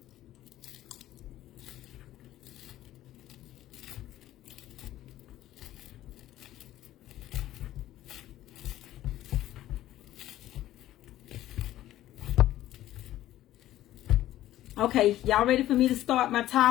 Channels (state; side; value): quieter; right; 14.0 dB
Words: Okay, y'all ready for me to start my